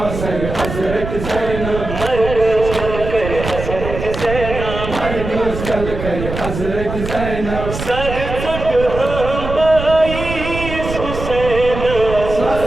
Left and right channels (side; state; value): right; noise; rumble, 7 dB below the sound